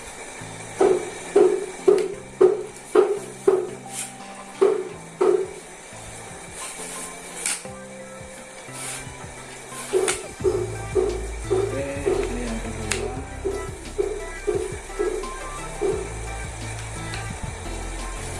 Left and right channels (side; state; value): both; identical; correlation 1.00